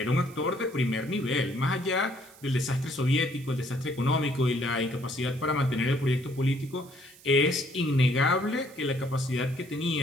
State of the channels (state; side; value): noise; right; hiss, 23 dB below the sound